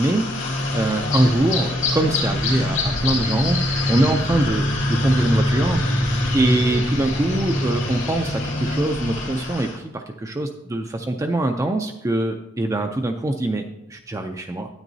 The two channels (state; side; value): normal; both; correlation 0.77